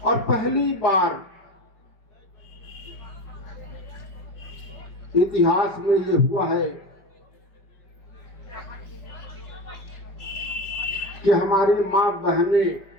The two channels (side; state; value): right; late; 5.2 ms